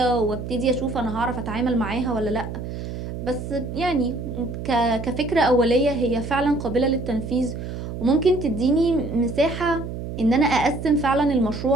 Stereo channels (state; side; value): noise; right; hum, 7 dB below the sound